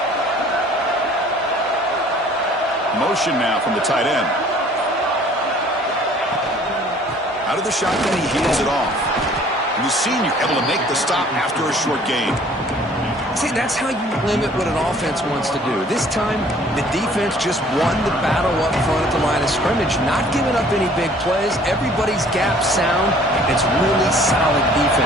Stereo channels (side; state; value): both; normal; correlation 0.54